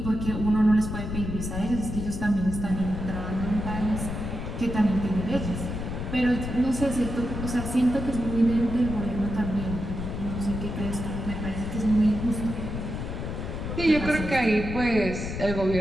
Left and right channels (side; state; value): left; noise; rumble, 5 dB below the sound